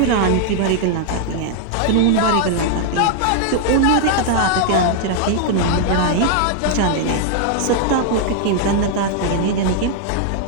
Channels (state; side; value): different; both; correlation 0.00